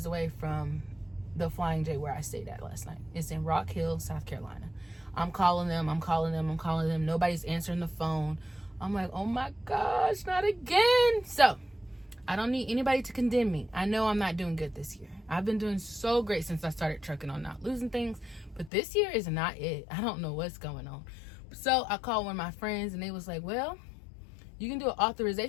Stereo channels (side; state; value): right; drops out; at 18.7 s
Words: away from the Flying J where I stayed at last night. It's in Rock Hill, South Carolina. I'm calling them. Nobody's answering the phone. I'm like, oh my gosh, not again. So I don't need anybody to condemn me. I know I'm not doing good this year. I've been doing so great since I started trucking on not losing things, but this year is not it. I don't know what's going on. So I called one of my friends and they was like, well, you can do an